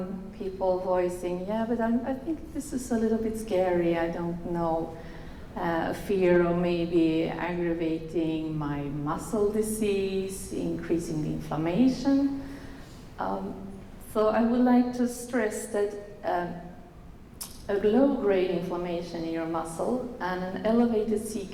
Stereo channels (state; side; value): identical; both; correlation 1.00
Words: people voicing, yeah, but I think this is a little bit scary, I don't know. Fear of maybe aggravating my muscle disease, increasing the inflammation. So I would like to stress that a low-grade inflammation in your muscle and an elevated